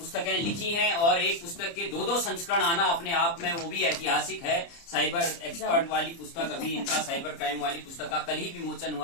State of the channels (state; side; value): late; right; 30 ms